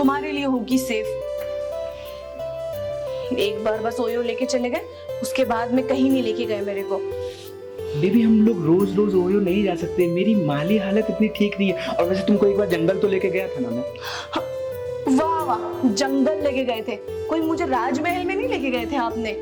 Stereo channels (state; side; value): identical; both; correlation 1.00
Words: लिए होगी सेफ। एक बार बस ओयो लेके चले गए, उसके बाद में कहीं नहीं लेके गए मेरे को। बेबी हम लोग रोज रोज ओयो नहीं जा सकते, मेरी माली हालत इतनी ठीक नहीं है। और वैसे तुमको एक बार जंगल तो लेके गया था ना मैं। वाह वाह, जंगल लेके गए थे, कोई मुझे राजमहल में नहीं लेके गए थे आपने।